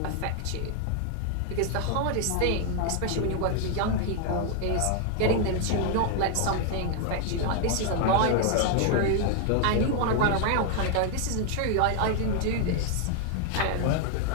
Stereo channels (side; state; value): both; different; correlation 0.00